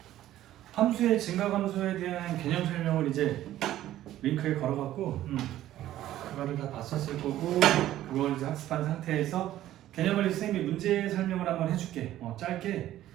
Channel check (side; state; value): left; quieter; 13.5 dB